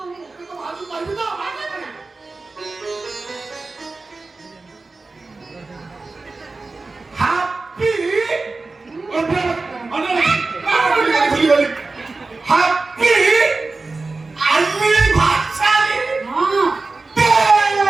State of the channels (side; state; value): left; quieter; 3.6 dB